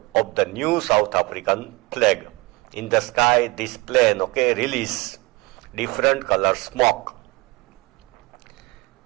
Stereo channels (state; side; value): quieter; left; 24.6 dB